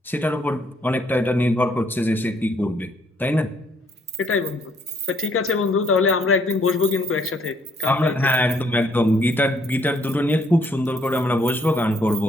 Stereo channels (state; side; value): normal; both; correlation 0.67